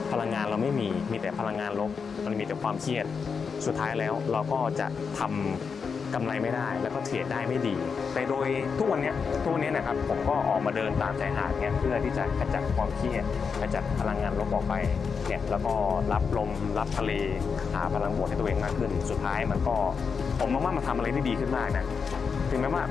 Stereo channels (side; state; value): right; quieter; 5.7 dB